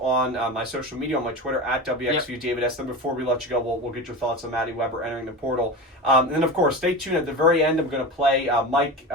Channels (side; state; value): both; normal; correlation 0.26